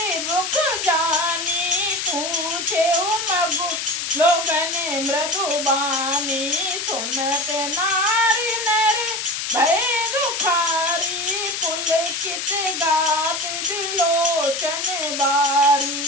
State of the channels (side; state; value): left; noise; hiss, 3 dB below the sound